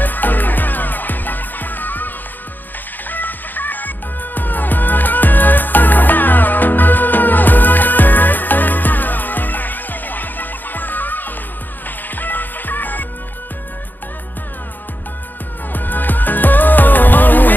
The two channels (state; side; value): late; right; 0.088 ms